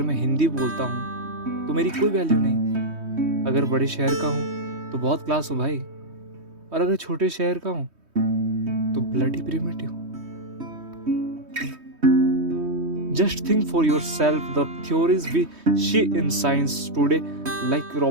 मैं हिंदी बोलता हूँ तो मेरी कोई वैल्यू नहीं, अगर बड़े शहर का हूँ तो बहुत क्लास हूँ भाई, और अगर छोटे शहर का हूँ तो bloody primitive. Just think for yourself the theories we see in science today, like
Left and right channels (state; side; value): late; left; 3.2 ms